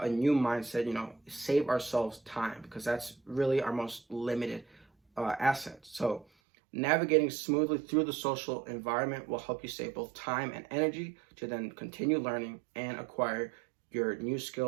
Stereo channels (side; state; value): left; drops out; at 6.2 s